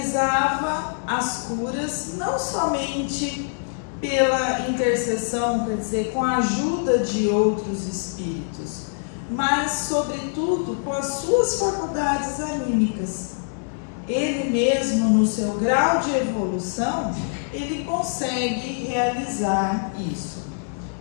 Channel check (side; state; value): right; silent; digital silence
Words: as curas não somente pela intercessão, quer dizer, com a ajuda de outros espíritos, mas, sobretudo, com as suas faculdades anímicas. Ele mesmo, no seu grau de evolução, ele consegue realizar isso.